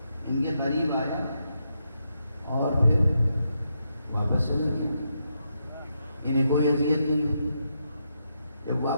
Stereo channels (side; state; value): both; inverted; correlation -0.82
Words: ان کے قریب آیا اور پھر واپس چلا گیا. انہیں کوئی اذیت نہیں ہوئی. جب